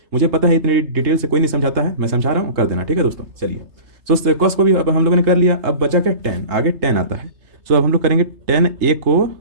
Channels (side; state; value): left; late; 3.3 ms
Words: मुझे पता है इतनी डिटेल से कोई नहीं समझाता है, मैं समझा रहा हूँ, कर देना। ठीक है दोस्तों। चलिए सो कॉस को भी अब हम लोगों ने कर लिया, अब बचा क्या, टेन। आगे टेन आता है। सो अब हम लोग करेंगे टेन ए को